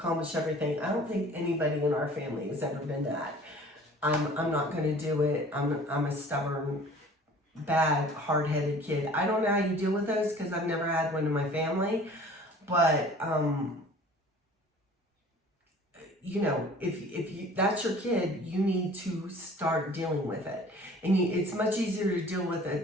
everything. I don't think anybody in our family has ever been that. I'm not going to do it. I'm a stubborn, bad, hard-headed kid. I don't know how you deal with those because I've never had one in my family, but you know, if that's your kid, you need to start dealing with it. And it's much easier to deal with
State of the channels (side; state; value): both; normal; correlation 0.47